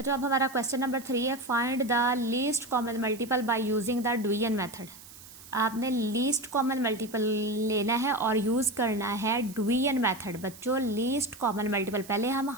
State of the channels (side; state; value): right; noise; hiss, 18 dB below the sound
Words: अब हमारा क्वेश्चन नंबर 3 है, find the least common multiple by using the division method. आपने लीस्ट कॉमन मल्टीपल लेना है और यूज़ करना है डिवीजन मेथड। बच्चों लीस्ट कॉमन मल्टीपल, पहले हम